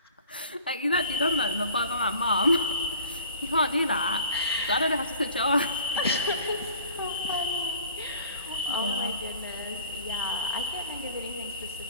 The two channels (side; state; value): both; inverted; correlation -0.48